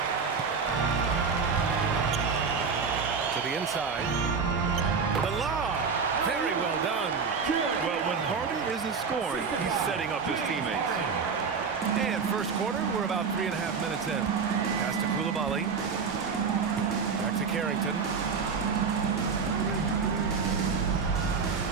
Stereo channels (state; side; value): quieter; left; 5.5 dB